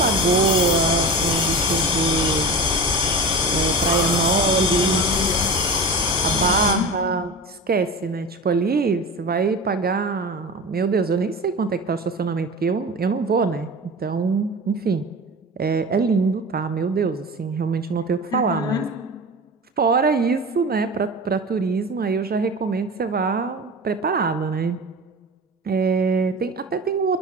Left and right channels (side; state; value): both; normal; correlation 0.31